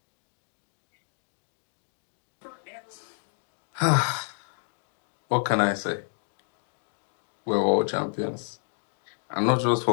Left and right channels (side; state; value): right; silent; digital silence